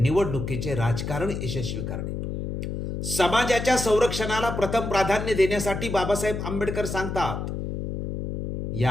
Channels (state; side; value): noise; left; hum, 5 dB below the sound